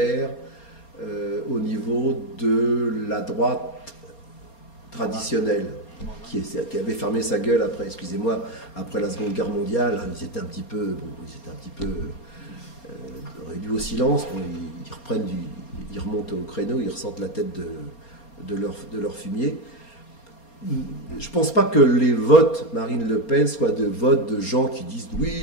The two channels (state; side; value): late; right; 4.3 ms